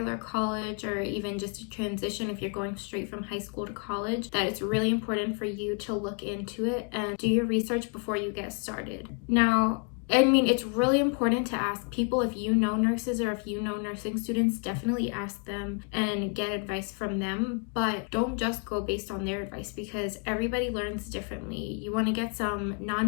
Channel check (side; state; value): right; quieter; 38.9 dB